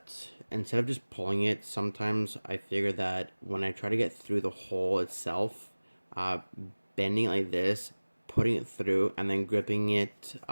instead of just pulling it, sometimes I figure that when I try to get through the hole itself, bending it like this, putting it through, and then gripping it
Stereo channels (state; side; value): inverted; both; correlation -1.00